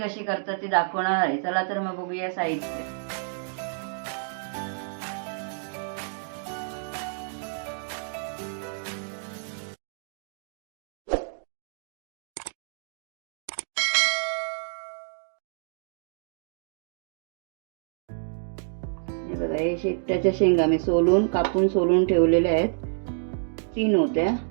करतात ती दाखवणार आहे. चला तर मग बघूया साहित्य. हे बघा, हे शेकटाच्या शेंगा मी कापून सोलून ठेवलेल्या आहेत. 3 होत्या.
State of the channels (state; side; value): silent; left; digital silence